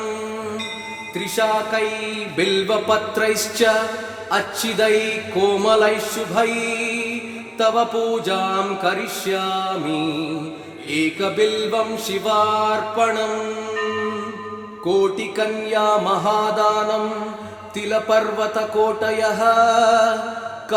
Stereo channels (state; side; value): identical; both; correlation 1.00